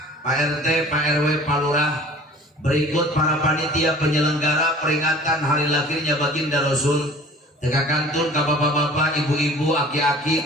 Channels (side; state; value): both; normal; correlation 0.46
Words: Pak RT, Pak RW, Pak Lurah, berikut para panitia penyelenggara peringatan hari lahirnya baginda Rasul. Tegakantun ka bapak-bapak, ibu-ibu,